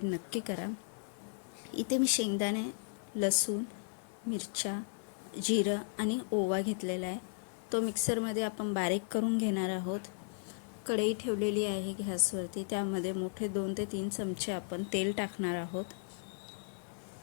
नक्की करा। इथे मी शेंगदाणे, लसूण, मिरच्या, जिरं आणि ओवा घेतलेला आहे। तो मिक्सरमध्ये आपण बारीक करून घेणार आहोत। कढई ठेवलेली आहे गॅसवरती, त्यामध्ये मोठे 2 ते 3 चमचे आपण तेल टाकणार आहोत।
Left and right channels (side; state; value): right; silent; digital silence